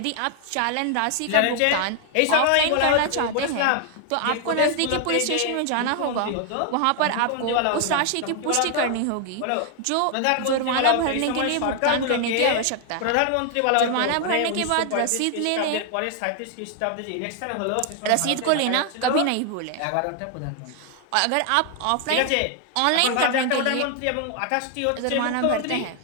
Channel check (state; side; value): different; both; correlation 0.00